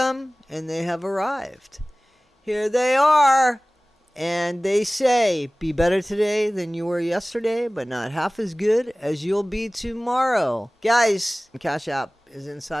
and they have arrived. Here they are. And they say, be better today than you were yesterday, but not half as good as you'll be tomorrow. Guys, Cash App is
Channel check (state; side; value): normal; both; correlation 0.98